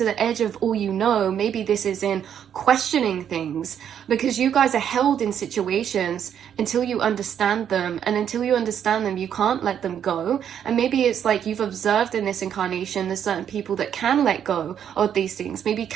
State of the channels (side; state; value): left; quieter; 9.0 dB